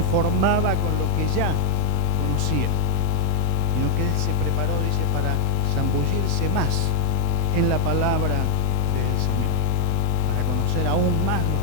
con lo que ya conocía, sino que él se preparó, dice, para zambullirse más en la palabra del Señor, para conocer aún más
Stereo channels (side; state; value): right; quieter; 4.1 dB